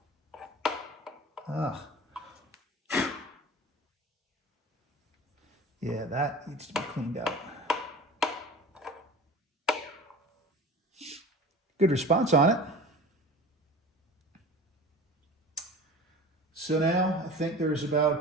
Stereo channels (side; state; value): both; normal; correlation 0.38